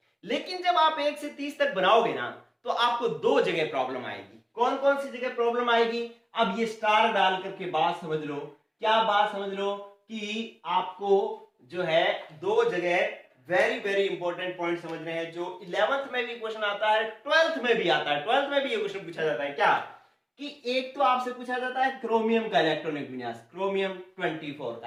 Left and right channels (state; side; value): identical; both; correlation 1.00